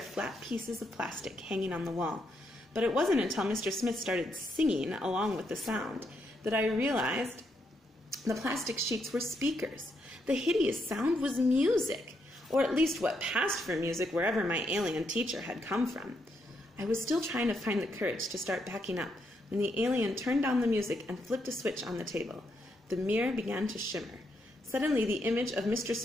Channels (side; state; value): both; normal; correlation 0.78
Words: flat pieces of plastic hanging on the wall, but it wasn't until Mr. Smith started singing along with the sound that I realized the plastic sheets were speakers. The hideous sound was music, or at least what passed for music wherever my alien teacher had come from. I was still trying to find the courage to start backing up when the alien turned down the music and flipped a switch on the table. The mirror began to shimmer. Suddenly, the image of Mr.